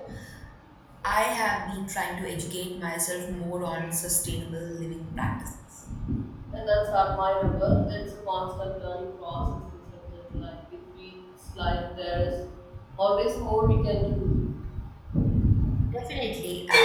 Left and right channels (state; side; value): identical; both; correlation 1.00